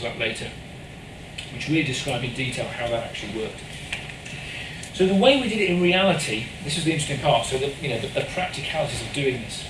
of that later, which really describe in detail how that actually worked. So the way we did it in reality, this is the interesting part, so the practicalities of doing this.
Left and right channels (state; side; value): identical; both; correlation 1.00